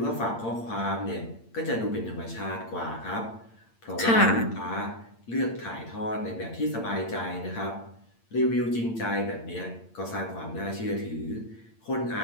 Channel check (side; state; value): right; late; 8.8 ms